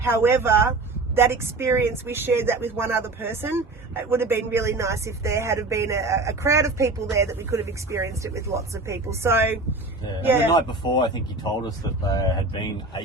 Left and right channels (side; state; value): left; quieter; 3.2 dB